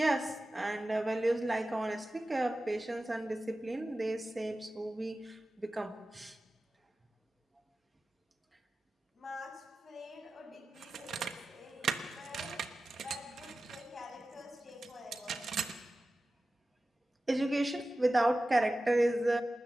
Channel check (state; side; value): normal; both; correlation 0.95